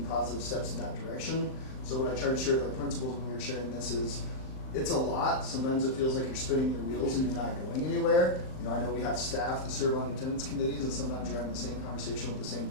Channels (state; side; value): late; right; 38 ms